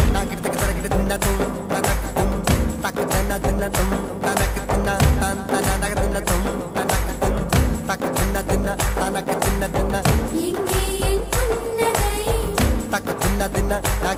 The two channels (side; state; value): both; identical; correlation 1.00